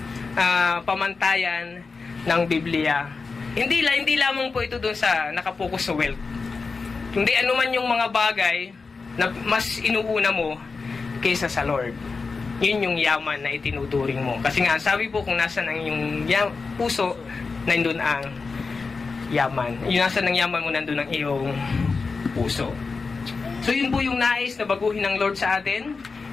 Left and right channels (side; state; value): right; quieter; 4.5 dB